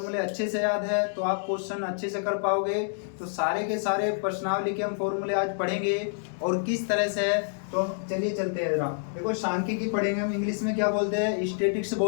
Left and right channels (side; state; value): right; silent; digital silence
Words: अच्छे से याद है तो आप क्वेश्चन अच्छे से कर पाओगे। तो सारे के सारे प्रश्नावली के हम फॉर्मूले आज पढ़ेंगे और किस तरह से है। तो चलिए चलते हैं जरा। देखो, सांख्यिकी पढ़ेंगे हम। इंग्लिश में क्या बोलते हैं? स्टैटिस्टिक्स